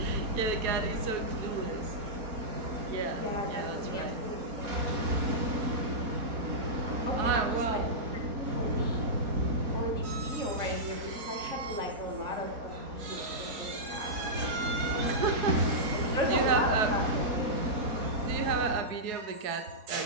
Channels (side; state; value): left; late; 4.7 ms